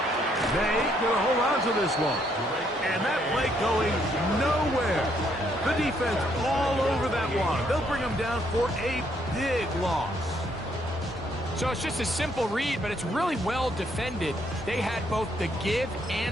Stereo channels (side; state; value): both; normal; correlation 0.71